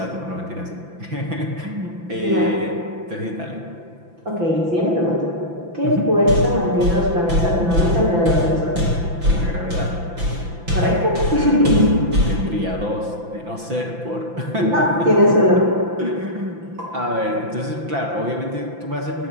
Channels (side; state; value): left; late; 5.9 ms